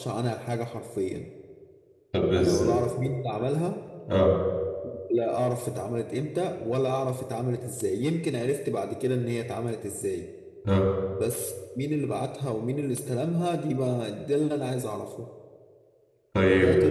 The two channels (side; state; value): both; identical; correlation 1.00